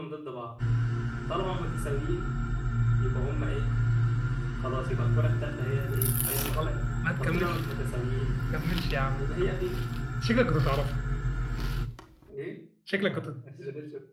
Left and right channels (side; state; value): both; identical; correlation 1.00